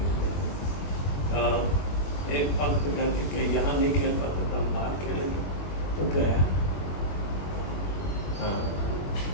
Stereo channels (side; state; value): right; late; 22 ms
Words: एक पंथ कहते कि यहाँ नहीं खेल पाते तो बाहर खेलेंगे, तो गया। हाँ,